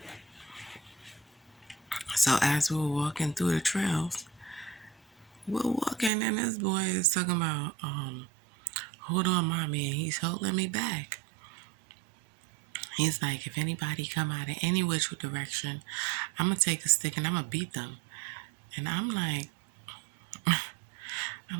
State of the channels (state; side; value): drops out; left; at 6.1 s